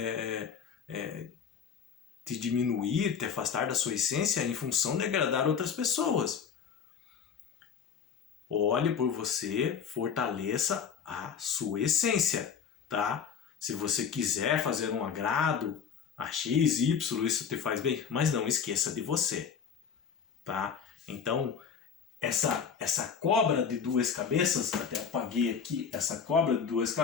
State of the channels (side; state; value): right; quieter; 6.9 dB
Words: te diminuir, te afastar da sua essência em função de agradar outras pessoas. Olhe por você, fortaleça a sua essência, tá? Se você quiser fazer um agrado a X, Y, isso te faz bem, mas não esqueça de você, tá? Então, essa cobra de duas cabeças, até apaguei aqui, essa cobra de duas